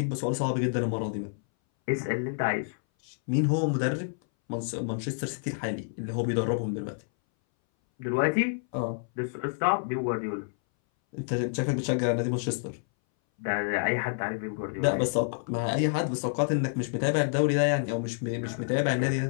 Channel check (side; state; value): right; silent; 59 dB below the other